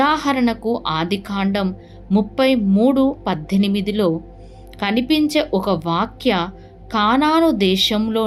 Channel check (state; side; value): identical; both; correlation 1.00